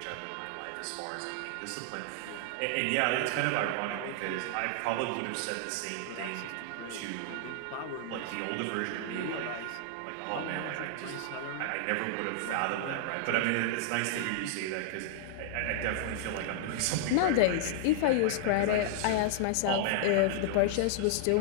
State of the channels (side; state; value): both; different; correlation -0.01